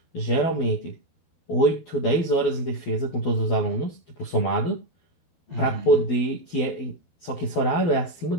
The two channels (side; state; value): right; late; 12 ms